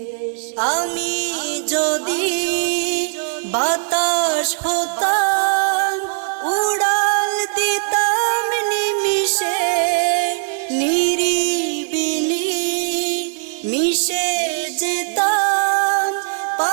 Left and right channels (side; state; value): left; silent; 66 dB below the other